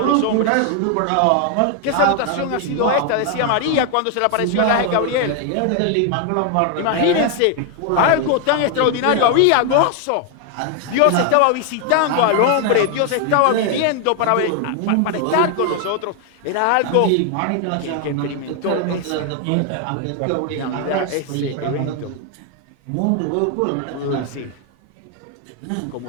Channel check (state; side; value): different; both; correlation 0.00